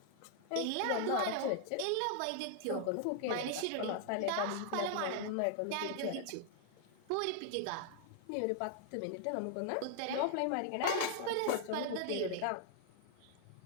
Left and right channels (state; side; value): different; both; correlation 0.00